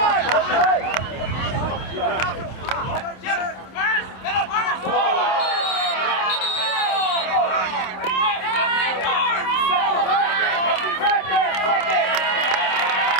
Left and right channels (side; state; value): right; late; 27 ms